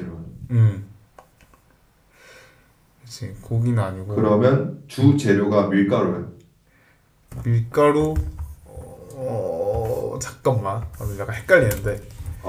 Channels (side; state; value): both; identical; correlation 1.00